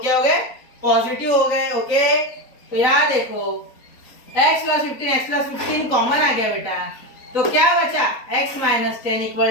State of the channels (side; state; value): right; late; 4.0 ms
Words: हो गए, पॉजिटिव हो गए। ओके, तो यहाँ देखो x प्लस 15 कॉमन आ गया बेटा, तो क्या बचा x minus 10